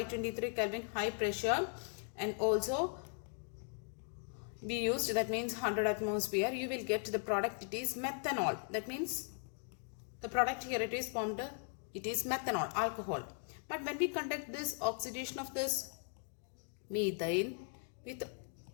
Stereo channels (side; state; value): right; silent; 52 dB below the other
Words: Kelvin high pressure, and also we used, that means 100 atmosphere. You will get the product, it is methanol. That means the product here it is formed, it is methanol, alcohol. But when we conduct this oxidation of this methane with